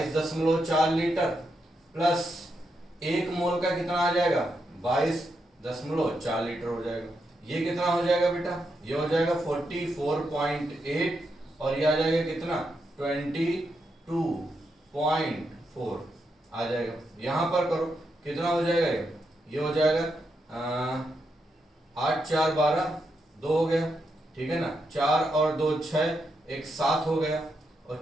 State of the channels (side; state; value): both; normal; correlation 0.83